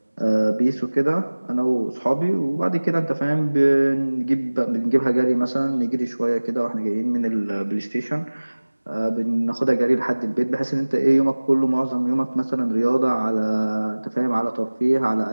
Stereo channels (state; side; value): inverted; both; correlation -1.00